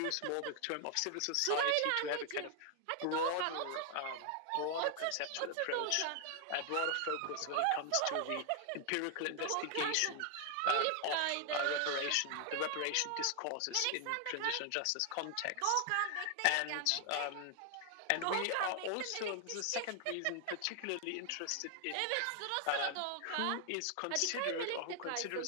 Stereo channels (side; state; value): both; different; correlation 0.00